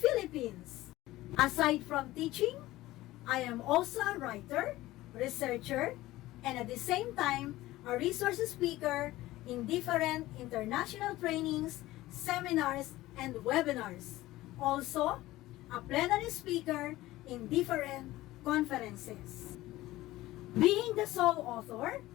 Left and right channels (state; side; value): quieter; right; 17.1 dB